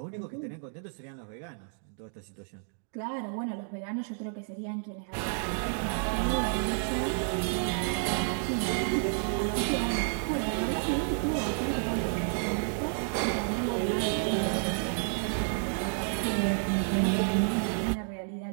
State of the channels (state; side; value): silent; left; digital silence